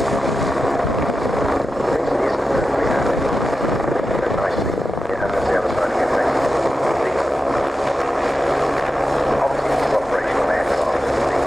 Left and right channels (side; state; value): both; normal; correlation 0.91